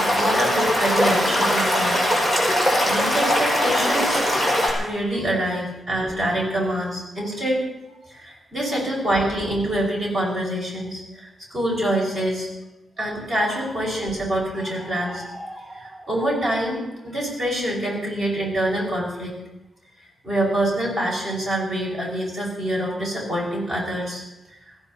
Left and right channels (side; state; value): both; normal; correlation 0.80